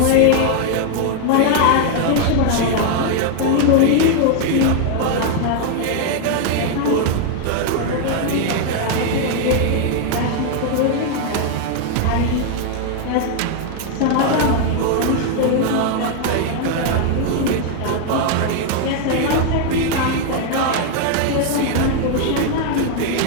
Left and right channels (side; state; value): both; different; correlation 0.00